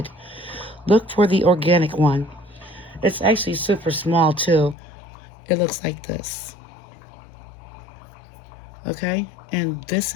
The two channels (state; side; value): drops out; right; at 4.8 s